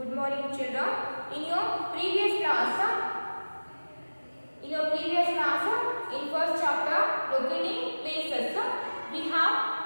Good morning, children. In your previous class, in first chapter, locating places, we have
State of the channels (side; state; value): both; inverted; correlation -1.00